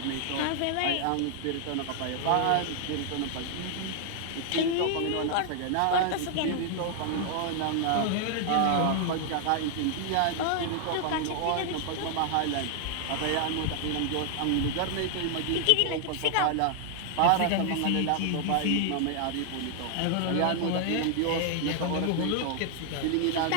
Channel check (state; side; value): different; both; correlation 0.00